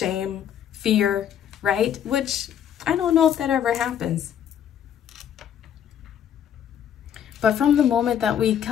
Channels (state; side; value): quieter; right; 9.3 dB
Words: fear, right? Which I don't know if that ever happens. But from the moment that we